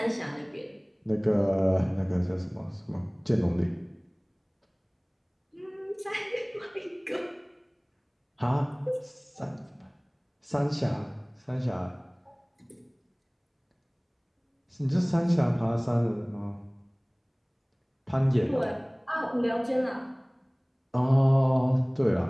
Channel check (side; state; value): both; identical; correlation 1.00